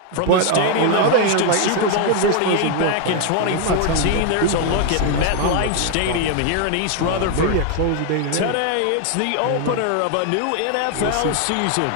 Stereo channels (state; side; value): different; both; correlation 0.00